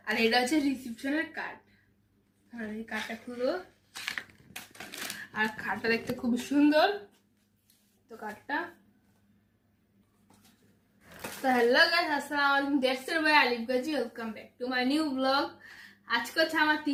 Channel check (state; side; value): identical; both; correlation 1.00